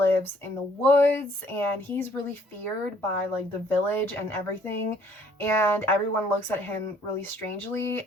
in the woods and he's really feared by like the village and everything, and everyone looks at him really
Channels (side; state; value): both; normal; correlation 0.61